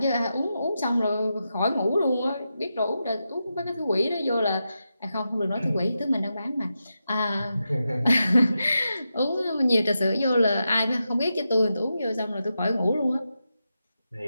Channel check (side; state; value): both; inverted; correlation -0.89